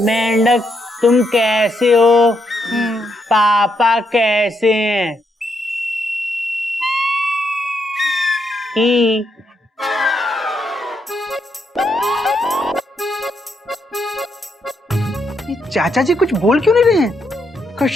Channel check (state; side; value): normal; both; correlation 0.78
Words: मेंढक तुम कैसे हो? पापा कैसे हैं? ही चाचा जी कुछ बोल क्यों नहीं रहे हैं?